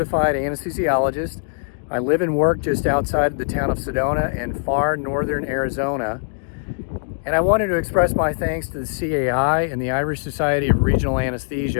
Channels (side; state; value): right; silent; digital silence